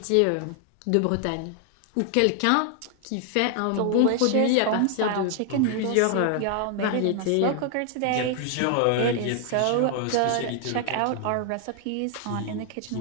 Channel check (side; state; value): both; different; correlation 0.00